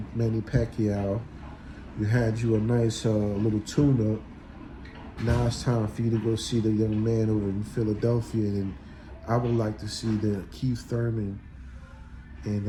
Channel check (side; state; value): both; identical; correlation 1.00